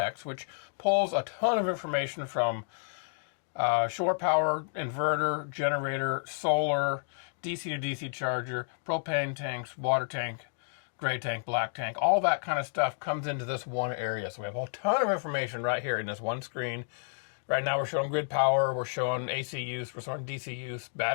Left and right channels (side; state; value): right; silent; digital silence